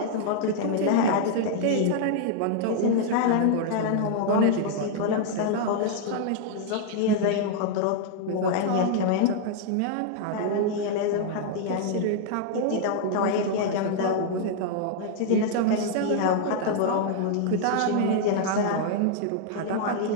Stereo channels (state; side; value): different; both; correlation -0.01